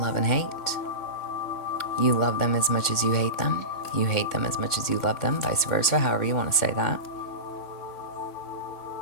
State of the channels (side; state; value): right; late; 3.5 ms